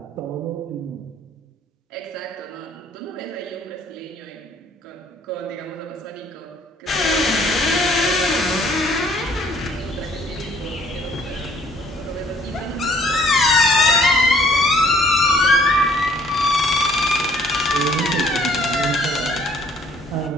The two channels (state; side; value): normal; both; correlation 0.60